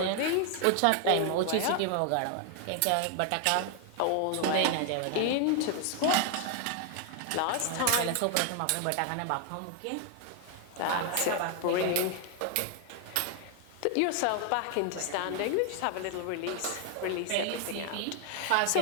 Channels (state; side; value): different; both; correlation 0.00